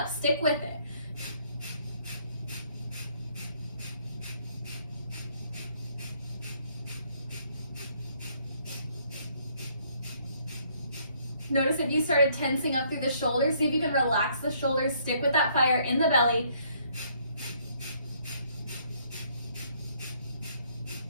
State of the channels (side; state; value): both; inverted; correlation -0.66